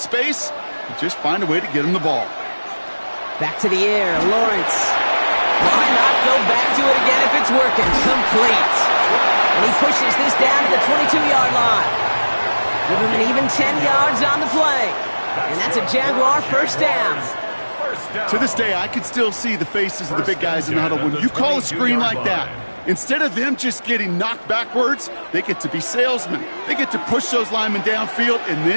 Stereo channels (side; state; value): both; inverted; correlation -1.00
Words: you just find a way to get him the ball. Back to the air, Lawrence. Why not go back to it again if it's working? Complete. And he pushes this down to the 22-yard line. Give him an even 10 yards on the play. And that's a Jaguar 1st down. To this day, I can still see the faces of the big guys in the huddle. When you call a screen like that, instead of them just getting knocked backwards, they get to be salesmen. They get to push those linemen downfield and